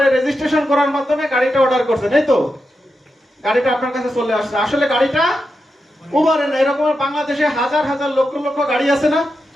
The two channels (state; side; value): normal; both; correlation 0.88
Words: রেজিস্ট্রেশন করার মাধ্যমে গাড়িটা অর্ডার করছেন, এই তো গাড়িটা আপনার কাছে চলে আসছে। আসলে গাড়িটা উবারে না। এরকম বাংলাদেশে হাজার হাজার লক্ষ লক্ষ গাড়ি আছে না?